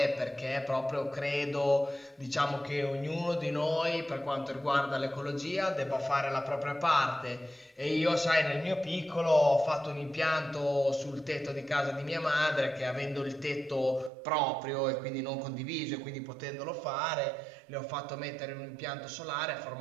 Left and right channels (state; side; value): drops out; left; at 14.1 s